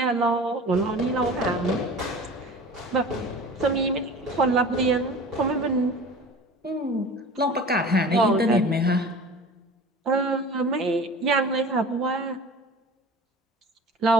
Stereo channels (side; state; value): both; normal; correlation 0.39